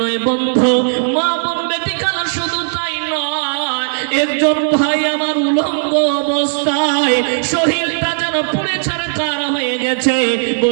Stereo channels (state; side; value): silent; left; digital silence